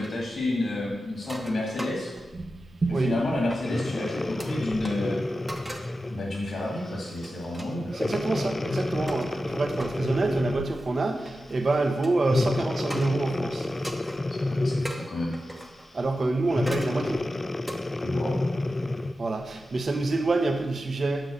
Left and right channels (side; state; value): both; normal; correlation 0.92